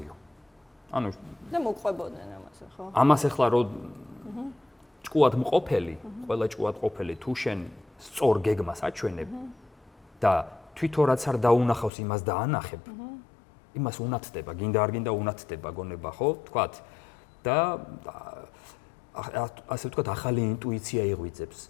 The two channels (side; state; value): right; drops out; at 11.9 s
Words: ანუ და მოყვებოდნენ ამაზე, ხო? ამას ახლა რო ჭკუად მყოფელი, ყველა ჭკუად ყოფილი თუ შენ სწორ გეგმას აჩვენებ და თვითონ რაც არ დაუნახავს იმას დაანახებ, იმას უნათდება, გინდა არ გინდა უნათდება გონება, ხო? თქვათ და ასე ვთქვათ, ახალი ინტუიცია იღვიძებს,